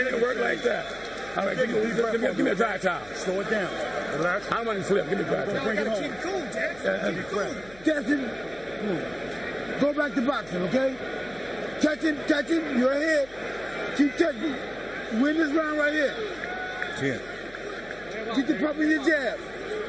to work like that. All right, give me a dry towel. Slow it down. Relax. I don't want to flip. Give me a dry towel. Bring it home. Jackson, go back to boxing, okay? Touch him, you're ahead. Keep touching. Win this round right here. 10. Get the pump in your jab.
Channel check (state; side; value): noise; left; hum, 23 dB below the sound